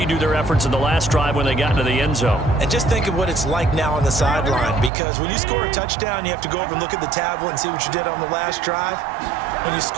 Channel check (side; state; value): left; drops out; at 4.9 s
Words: their efforts in the last drive when they got into the end zone. And just think of what it's like now on the sideline, because when you score a touchdown, you have to go over and look at the tablet and see what you did on the last drive. When you